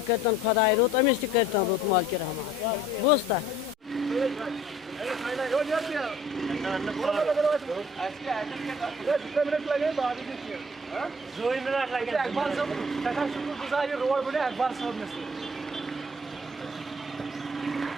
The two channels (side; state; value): both; normal; correlation 0.54